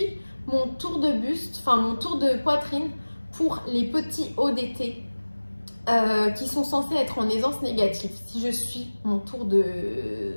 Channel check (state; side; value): inverted; both; correlation -1.00